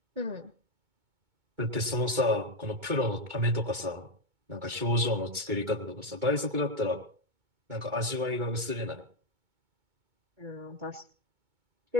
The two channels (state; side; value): late; left; 2.2 ms